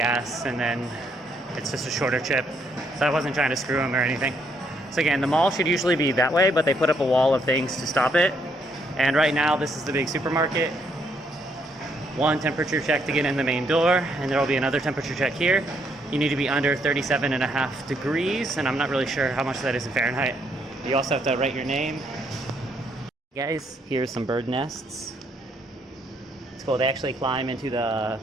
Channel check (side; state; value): both; normal; correlation 0.72